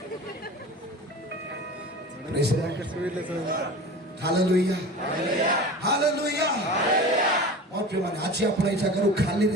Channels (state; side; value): normal; both; correlation 0.35